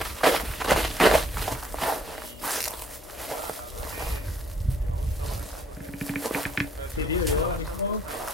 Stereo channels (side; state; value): both; normal; correlation 0.65